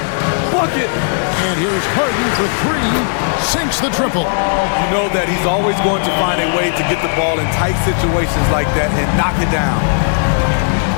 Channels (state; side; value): silent; right; digital silence